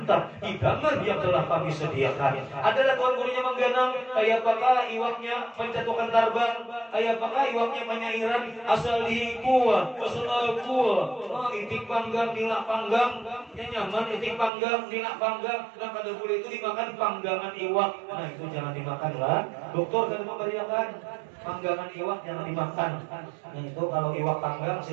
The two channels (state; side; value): drops out; left; at 14.5 s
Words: hidangan yang telah kami sediakan. Adalah Tuan Gurunya mengganang kayak apakah iwaknya pencatukan tarbang, kayak apakah iwaknya penyairan asal kuah, asal kuah, itik panggang, nilak panggang, nyaman itik panggang, nilak panggang. Nah kada boleh itu dimakan panggangan iwak. Nah itu jangan dimakan lah. Dokter kan memberikan panggangan iwak jangan dimakan. Nah itu kalau iwak panggang